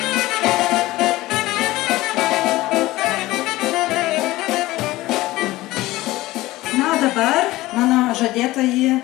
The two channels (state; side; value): quieter; right; 18.0 dB